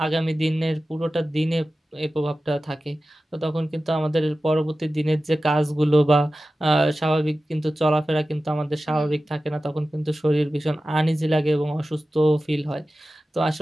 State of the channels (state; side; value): normal; both; correlation 0.95